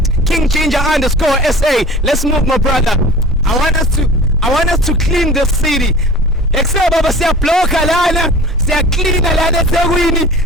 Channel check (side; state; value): both; normal; correlation 0.42